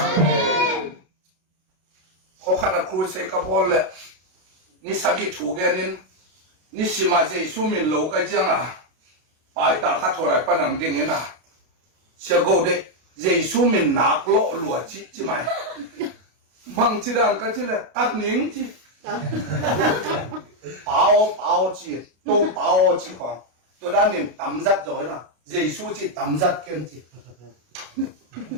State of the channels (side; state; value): left; late; 32 ms